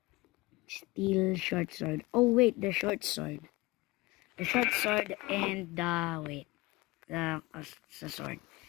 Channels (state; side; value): quieter; right; 21.7 dB